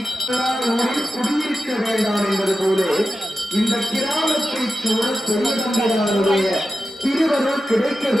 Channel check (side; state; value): both; normal; correlation 0.92